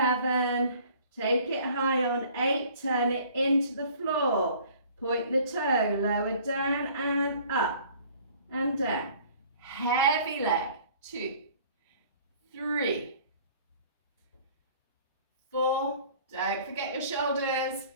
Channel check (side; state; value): both; inverted; correlation -0.52